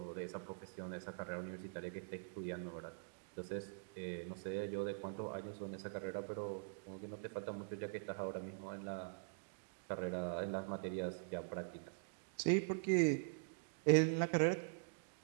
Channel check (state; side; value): silent; left; digital silence